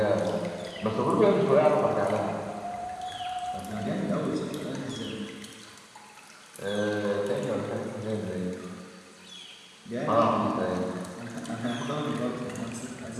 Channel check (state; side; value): identical; both; correlation 1.00